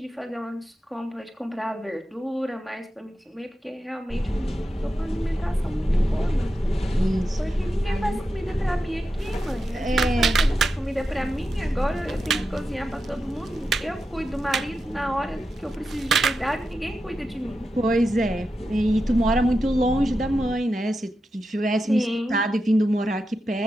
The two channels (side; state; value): both; normal; correlation 0.89